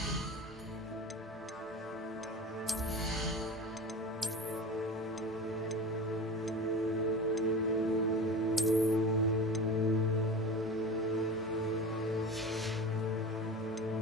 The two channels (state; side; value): normal; both; correlation 0.32